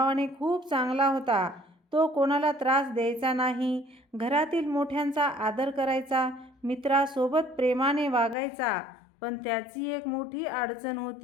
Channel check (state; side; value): drops out; right; at 8.3 s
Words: खूप चांगला होता. तो कोणाला त्रास द्यायचा नाही, घरातील मोठ्यांचा आदर करायचा, मित्रासोबत प्रेमाने वागायचा. पण त्याची एक मोठी अडचण